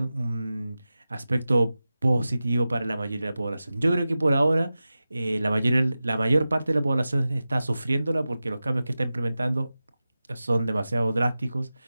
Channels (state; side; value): inverted; both; correlation -0.94